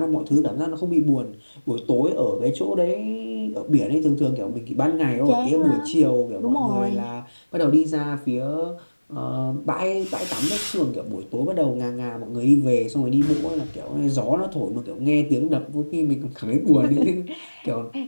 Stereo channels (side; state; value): both; inverted; correlation -1.00